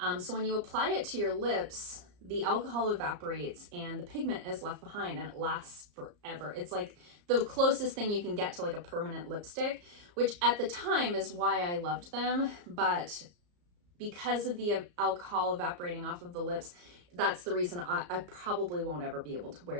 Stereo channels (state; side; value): late; left; 34 ms